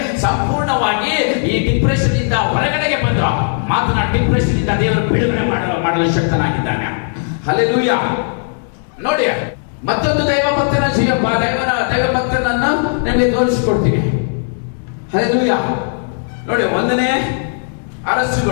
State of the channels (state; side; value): silent; right; 69 dB below the other